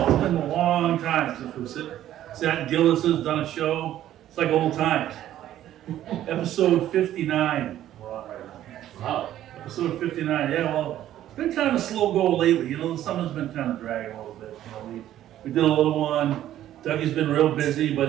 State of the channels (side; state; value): left; quieter; 12.5 dB